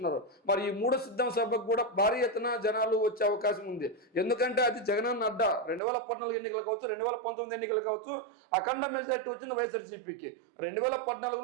మరి ఈ 3వ సిద్ధం సభకు కూడా భారీ ఎత్తున జనాలు వచ్చే అవకాశం ఉంది. ఎందుకంటే అది జగనన్న అడ్డ. 2014 ఎన్నికలు కావచ్చు, 2019 ఎన్నికలు కావచ్చు, అఖండ మెజారిటీ వచ్చింది వైఎస్ఆర్సీపీకి.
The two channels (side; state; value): left; drops out; at 5.8 s